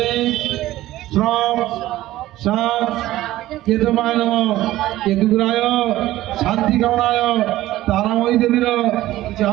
শ্রম শাম কেতুবায় নমঃ। কেতুগ্রায় শান্তি কামনায় তারাময়ী দেবীর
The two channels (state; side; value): quieter; left; 15.6 dB